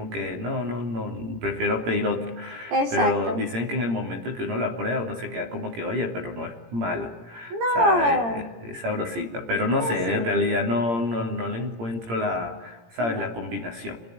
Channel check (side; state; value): left; late; 17 ms